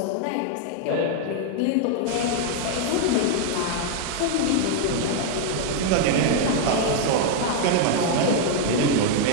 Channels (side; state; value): both; different; correlation 0.00